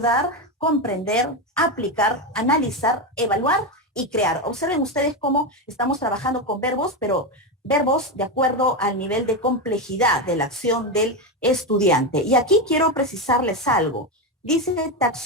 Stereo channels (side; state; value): both; normal; correlation 0.12